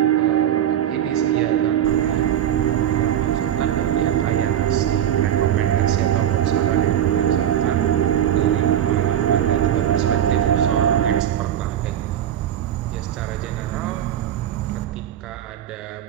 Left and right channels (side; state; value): left; quieter; 10.6 dB